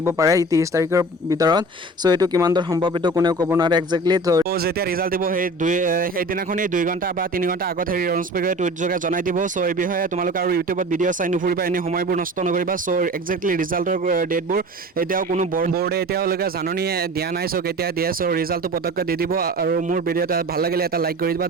পাৰে 30 তাৰিখৰ ভিতৰত চ' এইটো কিমান দূৰ সম্ভৱ এইটো কোনেও ক'ব নোৱাৰে একজেক্টলি তো যেতিয়া ৰিজাল্ট দিব সেইদিনাখনেই 2 ঘণ্টা বা 3 ঘণ্টা আগত এনাউন্স কৰি টুইট যোগে জনাই দিব চ' এই বিষয়ে তোমালোকে আৰু ইউটিউবত ভিডিঅ' চাই নুফুৰিবা এনে সময়বোৰ নষ্ট নকৰিবা চ' একজেক্টলি ৰিজাল্টৰ ডেটবোৰ এতিয়াও কোনো বৰ্ডে এতিয়ালৈকে জাননী দিয়া নাই চ' কেতিয়া দিয়ে চ' ৰিজাল্টটো পতককৈ দি দিব আৰু মোৰ ভিডিঅ'টো ভাল লাগিলে এটা লাইক কৰি দিবা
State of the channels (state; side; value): normal; both; correlation 0.39